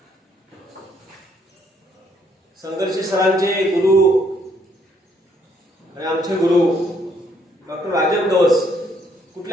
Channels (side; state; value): both; normal; correlation 0.69